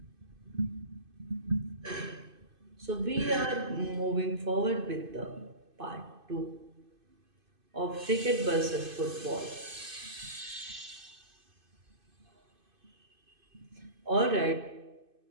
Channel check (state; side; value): late; left; 2.5 ms